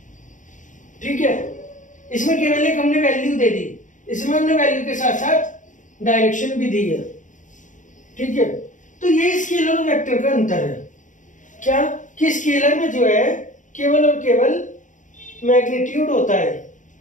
ठीक है, इसमें केवल एक हमने वैल्यू दे दी, इसमें हमने वैल्यू के साथ साथ डायरेक्शन भी दी है। ठीक है, तो ये स्केलर और वेक्टर का अंतर है। क्या कि स्केलर में जो है केवल और केवल मैग्नीट्यूड होता है।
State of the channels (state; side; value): late; right; 0.37 ms